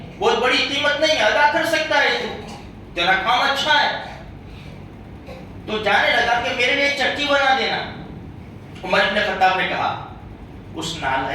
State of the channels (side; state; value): both; identical; correlation 1.00